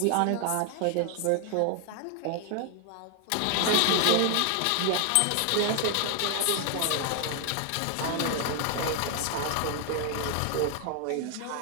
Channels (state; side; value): different; both; correlation 0.00